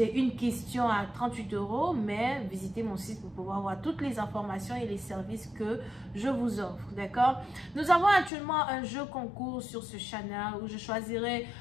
une question à 38 €, mais visitez mon site pour pouvoir voir toutes les informations et les services que je vous offre, d'accord? Nous avons actuellement un jeu concours sur ce channel où je choisirai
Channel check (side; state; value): right; drops out; at 8.3 s